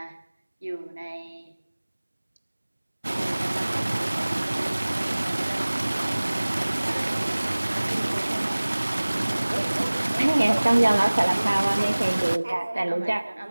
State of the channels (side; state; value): both; inverted; correlation -1.00